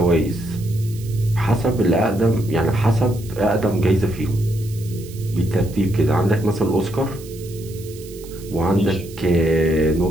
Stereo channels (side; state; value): right; noise; hiss, 20 dB below the sound